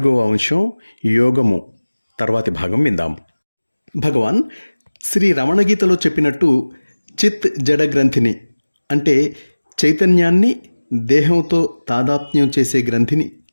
అంశం యోగము తర్వాతి భాగం విందాం. భగవాన్ శ్రీ రమణ గీతలో చెప్పినట్టు చిత్ జడ గ్రంథిని అంటే చైతన్యాన్ని దేహంతో తాదాత్మ్యం చేసే గ్రంథిని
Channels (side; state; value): both; inverted; correlation -1.00